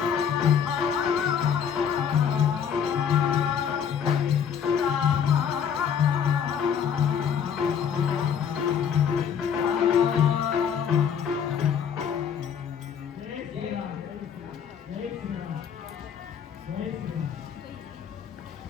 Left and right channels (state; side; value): quieter; right; 7.8 dB